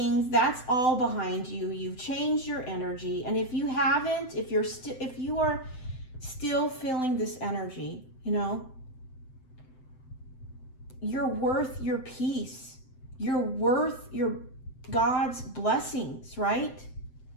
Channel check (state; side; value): late; right; 7.8 ms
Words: That's all behind you. You've changed your energy. And if you haven't, if you are still feeling this energy, you know, you're worth your peace. You're worth your God's blessings, right?